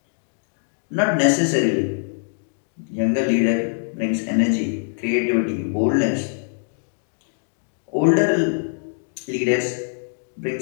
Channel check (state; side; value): silent; right; digital silence